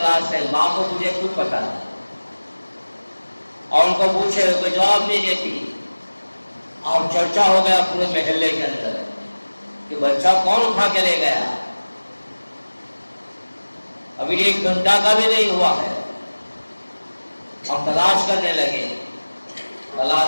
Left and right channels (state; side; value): inverted; both; correlation -1.00